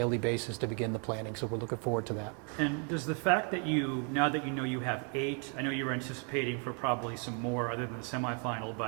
basis to begin the planning. So we're looking forward to that. And does the fact that now that you have 8, I know you were anticipating for probably some more other than the semifinal,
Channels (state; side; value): quieter; left; 38.8 dB